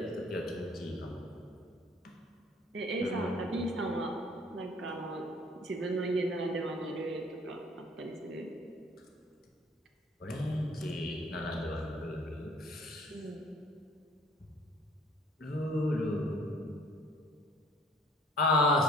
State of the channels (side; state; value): both; normal; correlation 0.54